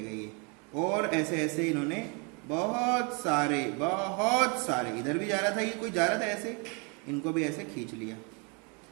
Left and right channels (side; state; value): left; quieter; 33.5 dB